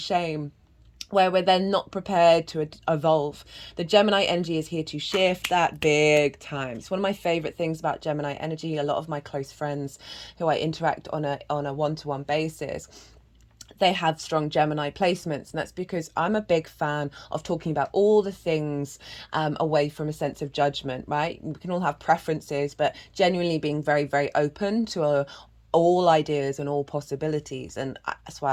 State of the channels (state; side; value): identical; both; correlation 1.00